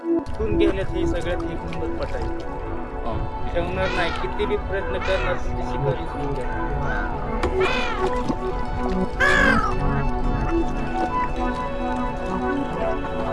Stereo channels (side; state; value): both; identical; correlation 1.00